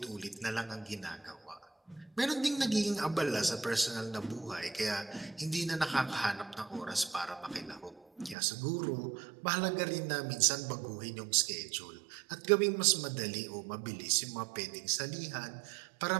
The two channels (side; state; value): left; drops out; at 8.3 s